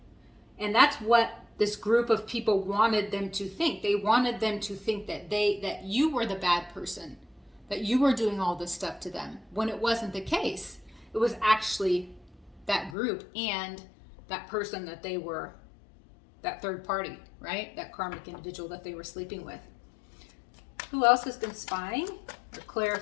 And that's what this group of people wanted them to think. They wanted them to think that you were the bad person, that you were doing all this stuff to them, when it wasn't the case. It was actually that group and that person that they were, that third party, right? That karmic individual that they were sleeping with. Who else has been spying? Or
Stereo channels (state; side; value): drops out; right; at 13.0 s